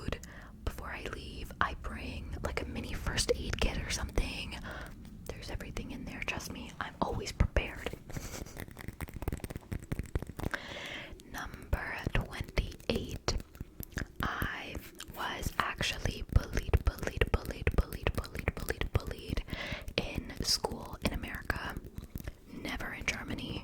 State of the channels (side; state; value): both; identical; correlation 1.00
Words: before I leave. I bring like a mini first aid kit or something. There's everything in there. Trust me, I'm always prepared. Number 28. I was actually bullied in school in America. Never in